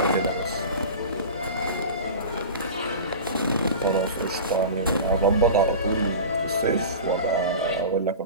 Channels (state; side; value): inverted; both; correlation -0.32